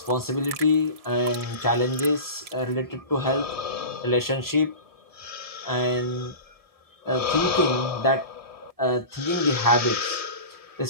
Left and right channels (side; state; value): left; late; 1.7 ms